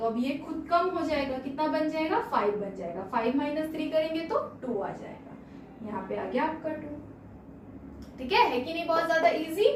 अब ये खुद कम हो जाएगा, कितना बन जाएगा? 5 बन जाएगा। 5 - 3 करेंगे तो 2 आ जाएगा, यहाँ पे आ गया आपका 2। ठीक है कि नहीं? बहुत ज्यादा इजी।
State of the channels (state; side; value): identical; both; correlation 1.00